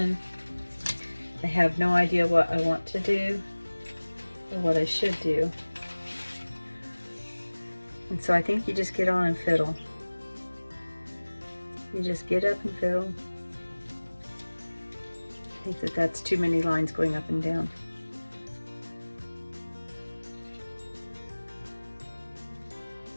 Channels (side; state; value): both; inverted; correlation -1.00